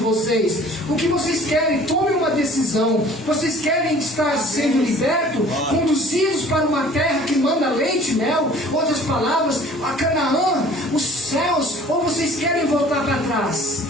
O que vocês querem? Tomem uma decisão. Vocês querem estar sendo libertos, conduzidos para uma terra que manda leite e mel? Outras palavras, a Canaã, os céus, ou vocês querem voltar para trás?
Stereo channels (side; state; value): both; normal; correlation 0.50